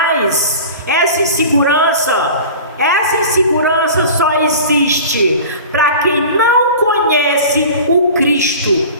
Essa insegurança só existe para quem não conhece o Cristo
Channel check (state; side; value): inverted; both; correlation -0.38